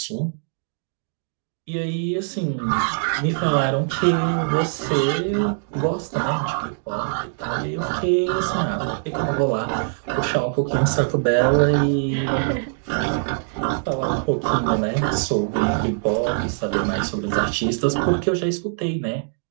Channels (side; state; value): left; silent; digital silence